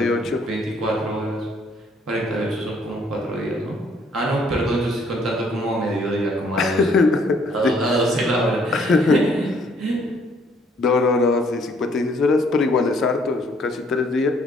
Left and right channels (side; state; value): both; normal; correlation 0.64